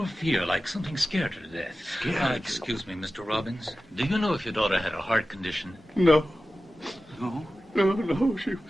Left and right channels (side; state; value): both; normal; correlation 0.95